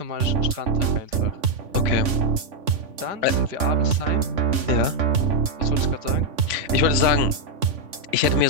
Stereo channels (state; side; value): late; left; 3.5 ms